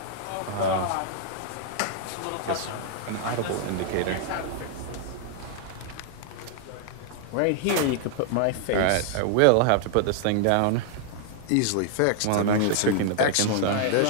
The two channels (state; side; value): different; both; correlation -0.01